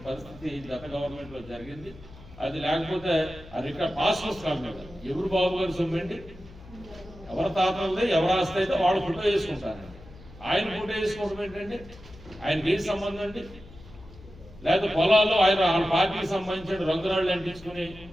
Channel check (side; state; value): left; noise; hum, 19 dB below the sound